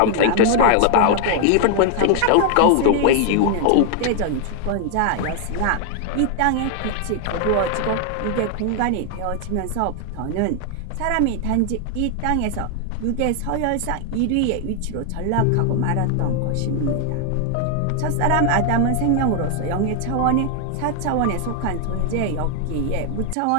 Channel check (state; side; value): different; both; correlation 0.00